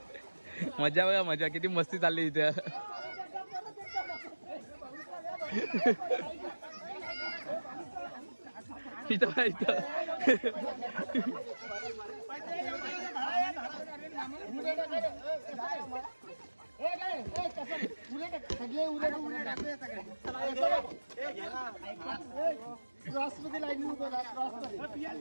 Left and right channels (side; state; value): both; inverted; correlation -1.00